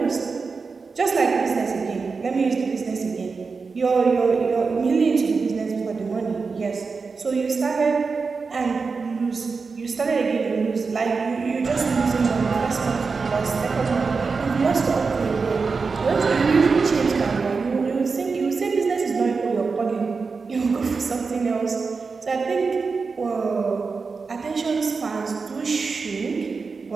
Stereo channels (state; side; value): quieter; left; 4.7 dB